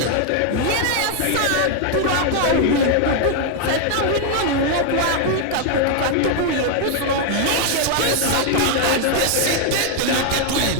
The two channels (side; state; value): both; different; correlation 0.00